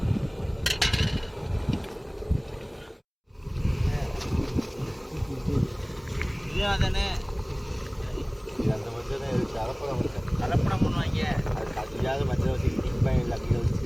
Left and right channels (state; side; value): identical; both; correlation 1.00